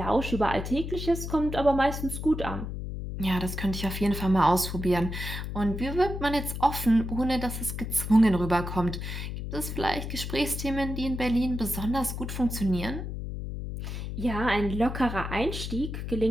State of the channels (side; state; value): left; noise; hum, 6 dB below the sound